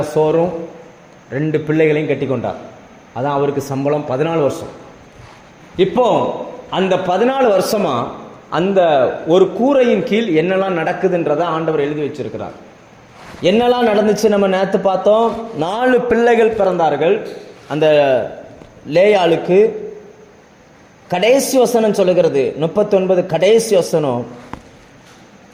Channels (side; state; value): both; identical; correlation 1.00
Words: சோறும் 2 பிள்ளைகளையும் கட்டி கொண்டார். அதான் அவருக்கு சம்பளம் 14 வருஷம். இப்போ அந்த 14 வருஷமா அந்த ஒரு கூரையின் கீழ் என்னெல்லாம் நடக்குதுன்றதை ஆண்டவர் எழுதி வச்சிருக்கிறார். என்னெல்லாம் நடந்துச்சு நம்ம நேற்று பார்த்தோம். 4 பிள்ளைகள் பிறந்தார்கள். அந்த லேயாளுக்கு கடைசி வசனம் சொல்லுகிறது, 39 கடைசி வசனம்,